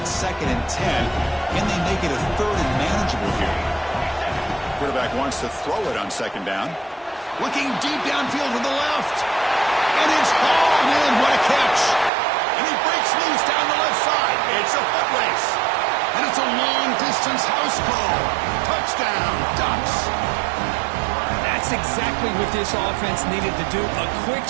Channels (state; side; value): drops out; left; at 12.1 s